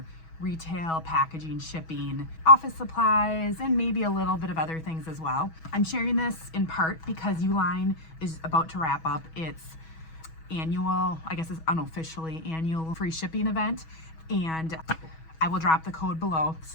retail, packaging, shipping, office supplies, and maybe a little bit of other things as well. I'm sharing this in part because ULINE is about to wrap up its annual, I guess it's unofficially annual free shipping event, and I will drop the code below. This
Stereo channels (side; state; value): right; late; 6.2 ms